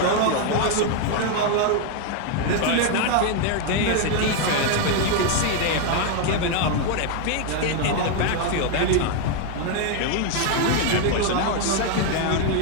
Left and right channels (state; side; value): different; both; correlation 0.01